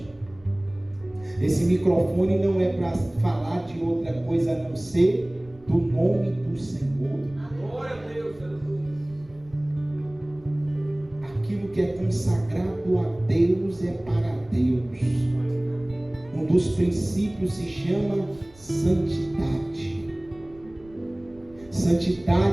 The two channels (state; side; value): noise; right; rumble, 25 dB below the sound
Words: Esse microfone não é para falar de outra coisa a não ser do nome do Senhor. Glória a Deus. Aquilo que é consagrado a Deus é para Deus. Um dos princípios se chama santidade.